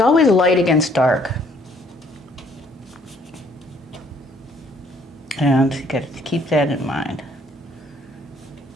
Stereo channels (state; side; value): normal; both; correlation 0.63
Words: light against dark. And you got to keep that in mind.